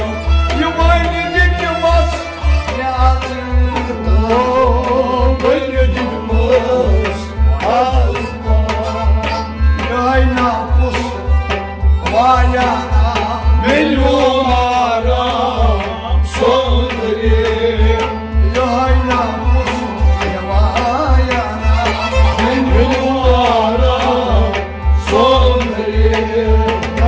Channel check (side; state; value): both; identical; correlation 1.00